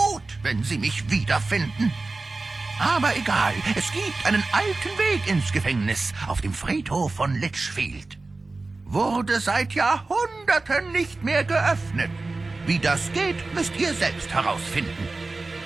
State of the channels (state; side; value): quieter; left; 3.5 dB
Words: wenn Sie mich wiederfinden. Aber egal, es gibt einen alten Weg ins Gefängnis auf dem Friedhof von Litchfield. Wurde seit Jahrhunderten nicht mehr geöffnet. Wie das geht, müsst ihr selbst herausfinden.